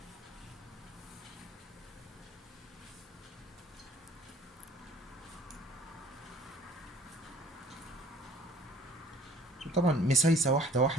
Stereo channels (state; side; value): normal; both; correlation 0.51